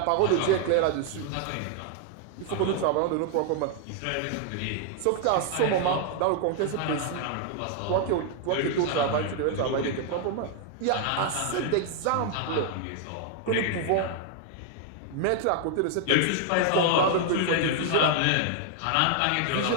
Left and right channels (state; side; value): different; both; correlation 0.00